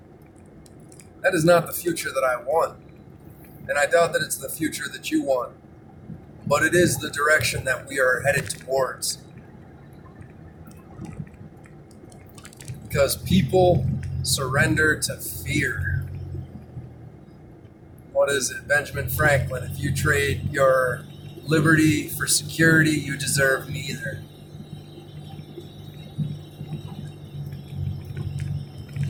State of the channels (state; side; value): identical; both; correlation 1.00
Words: That is not the future that I want. And I doubt that it's the future that you want. But it is the direction that we are headed towards. Because people surrender to fear. What is it? Benjamin Franklin. If you trade your liberty for security, you deserve neither.